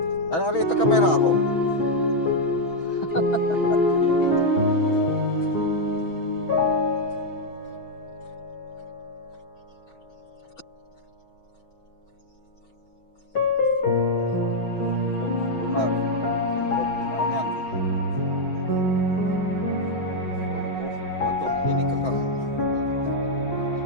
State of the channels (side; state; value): right; late; 6.2 ms